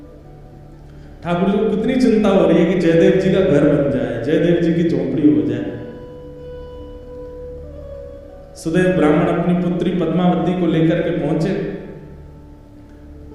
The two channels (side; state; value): both; identical; correlation 1.00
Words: ठाकुर जी को कितनी चिंता हो रही है कि जयदेव जी का घर बन जाए, जयदेव जी की झोपड़ी हो जाए। सुदेव ब्राह्मण अपनी पुत्री पद्मावती को लेकर के पहुंचे।